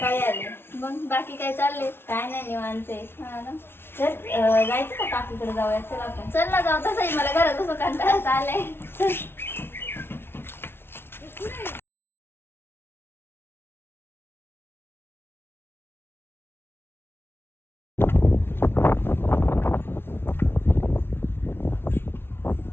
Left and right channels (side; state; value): right; late; 0.11 ms